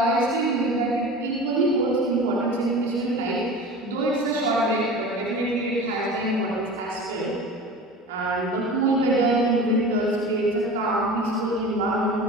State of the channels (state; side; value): normal; both; correlation 0.35